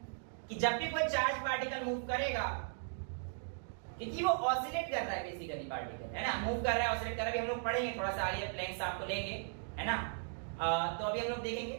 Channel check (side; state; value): left; silent; digital silence